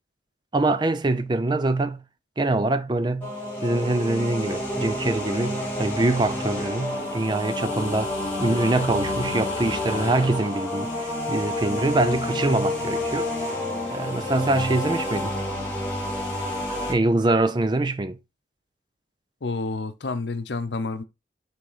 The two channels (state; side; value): normal; both; correlation 0.60